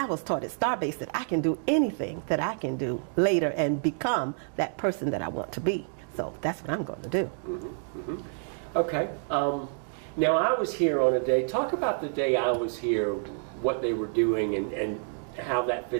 was taught at Starbase that I can do anything that I can do later and become that person that I want to be. So that's what I'm going to do. Mm-hmm. Mm-hmm. Okay. Now I was here on a day, talk about the day I was here, what they were doing and how that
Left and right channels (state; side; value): silent; left; 58 dB below the other